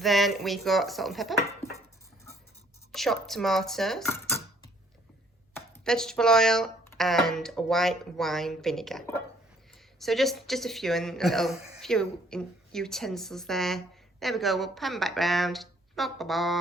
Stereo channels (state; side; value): normal; both; correlation 0.62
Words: we've got salt and pepper, chopped tomatoes, vegetable oil, and white wine vinegar. So just a few and a little few utensils there. There we go. We'll pan back round.